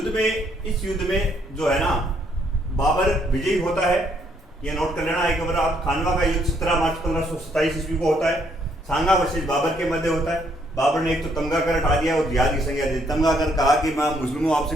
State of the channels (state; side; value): normal; both; correlation 0.70